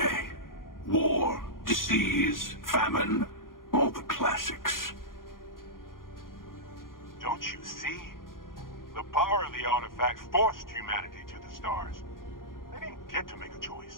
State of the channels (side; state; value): right; late; 0.91 ms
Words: War, disease, famine, all the classics. Don't you see? The power of the artifacts forced humanity to the stars. They didn't get to make a